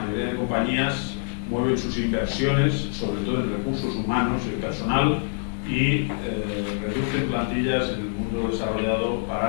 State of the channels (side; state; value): right; silent; 62 dB below the other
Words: de compañías mueven sus inversiones, sobre todo en recursos humanos y personal, y reducen plantillas en el mundo desarrollado